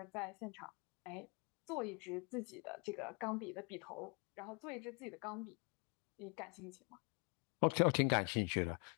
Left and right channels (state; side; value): quieter; right; 34.5 dB